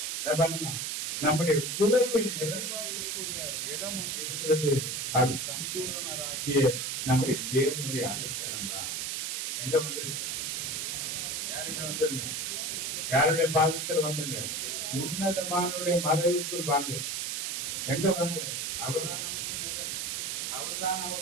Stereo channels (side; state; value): right; noise; hiss, 2 dB below the sound